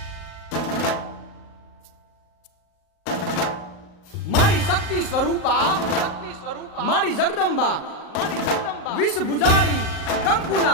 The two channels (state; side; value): late; right; 38 ms